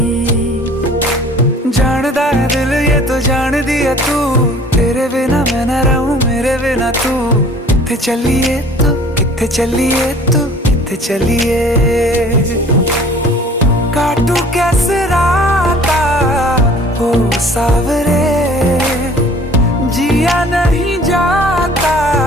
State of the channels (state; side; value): normal; both; correlation 0.50